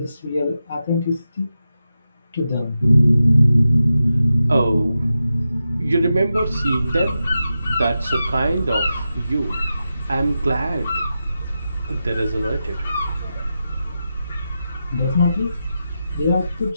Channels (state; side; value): inverted; both; correlation -0.90